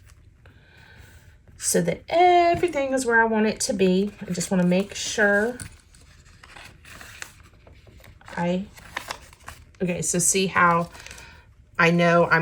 so that everything is where I want it to be. I just want to make sure okay, so see how I know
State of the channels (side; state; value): both; identical; correlation 1.00